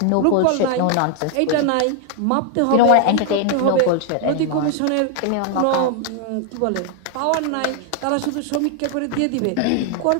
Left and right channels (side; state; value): both; different; correlation 0.00